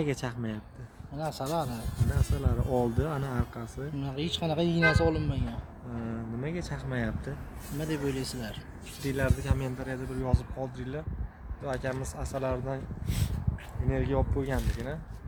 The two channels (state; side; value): identical; both; correlation 1.00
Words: chaqmayapti? Mana asalari. Mana asalari oldi, ana orqasi. Hech qanaqa iynasi olinmagan. Nimaga chaqmayapti? Nima deb o'ylaysizlar? Fikringlarni kommentariyada bir yozib qoldiringlar. Bu akamiz asalaridan energiya olib qo'yganligini.